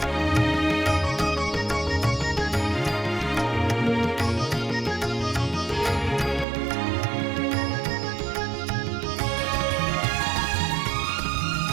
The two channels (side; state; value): left; drops out; at 6.5 s